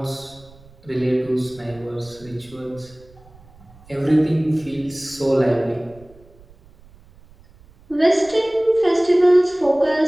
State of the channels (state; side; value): noise; right; rumble, 25 dB below the sound